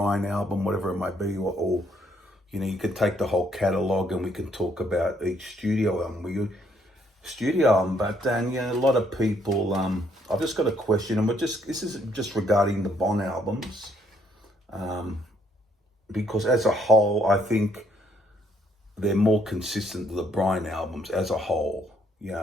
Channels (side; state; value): both; normal; correlation 0.69